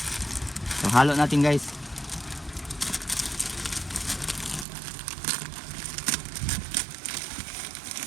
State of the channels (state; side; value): drops out; left; at 4.7 s